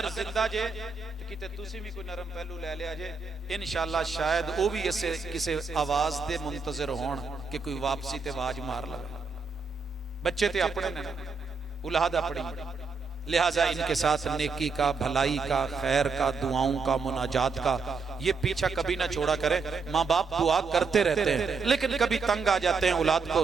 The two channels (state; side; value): quieter; left; 4.7 dB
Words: जिंदा जे किते तुसी भी कोई नरम पहलू ले लिया जे, इंशाअल्लाह शायद वो भी इससे किसी आवाज दे मुंतजर होण कि कोई वापसी ते आवाज मार लगे। बच्चे ते अपने ने, औलाद अपनी, लिहाजा इनके साथ नेकी का, भलाई का, खैर का, दुआओं का, मुनाजात का ये पीछा कभी ना छोड़ा करें। माँ बाप दुआ करते रहते हैं लेकिन कभी तंग आ जाते हैं, औलाद को